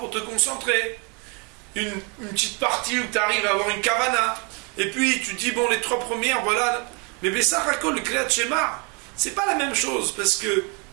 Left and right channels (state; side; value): quieter; left; 33.0 dB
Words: te concentrer, une petite partie où tu arrives à avoir une kavana, et puis tu dis, bon, les trois premières, voilà. Mais Bessachakol, le Kriyat Shema, c'est pas la même chose, parce que,